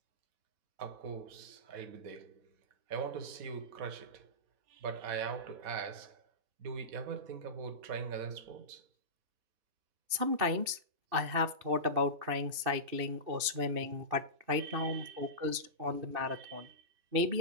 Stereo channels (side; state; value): left; late; 2.7 ms